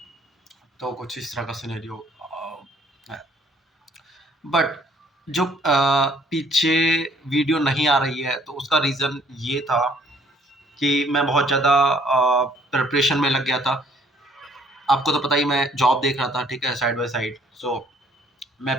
तो कुछ इस तरह का सिनेरियो है। बट जो पीछे वीडियो नहीं आ रही है, तो उसका रीज़न ये था कि मैं बहुत ज़्यादा प्रिपरेशन में लग गया था। आपको तो पता ही, मैं जॉब देख रहा था, ठीक है, साइड बाय साइड। मैं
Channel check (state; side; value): normal; both; correlation 0.61